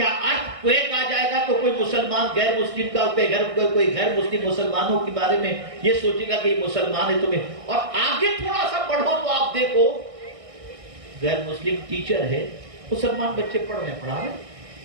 ارتھ کویک آ جائے گا تو کوئی مسلمان غیر مسلم کا کوئی غیر مسلم مسلمانوں کے بارے میں یہ سوچے گا کہ یہ مسلمان ہے تمہیں؟ اور آگے تھوڑا سا پڑھو تو آپ دیکھو غیر مسلم ٹیچر ہے، مسلمان بچے پڑھنے پڑھا رہے،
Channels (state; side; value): late; left; 1.6 ms